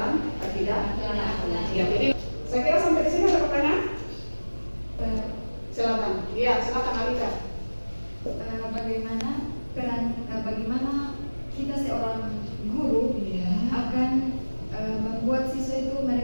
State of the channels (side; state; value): both; inverted; correlation -1.00